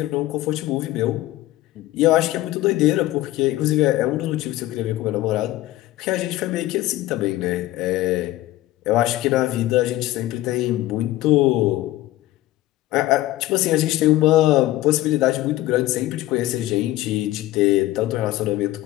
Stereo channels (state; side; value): quieter; right; 16.1 dB